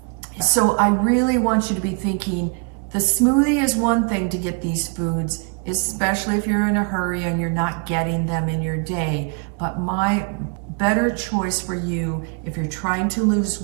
So I really want you to be thinking, the smoothie is one thing to get these foods. especially if you're in a hurry and you're not getting them in your day. But my better choice for you, if you're trying to lose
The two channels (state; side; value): quieter; left; 35.6 dB